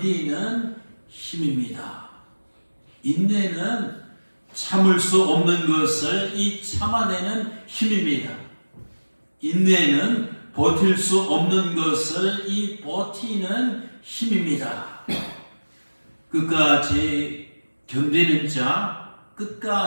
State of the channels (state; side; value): inverted; both; correlation -1.00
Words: 힘입니다. 인내는 참을 수 없는 것을 참아내는 힘입니다. 인내는 버틸 수 없는 것을 버티는 힘입니다. 끝까지 견디는 자,